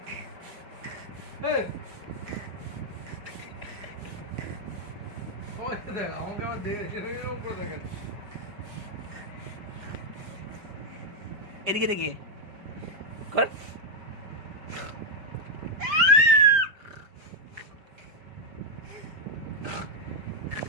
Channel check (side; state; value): left; late; 5.0 ms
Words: দেখ আমাকে আবার দেখে উপরে দেখেন এদিকে দেখি কর